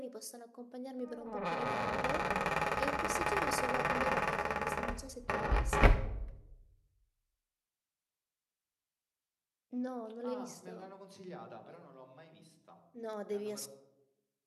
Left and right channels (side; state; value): both; identical; correlation 1.00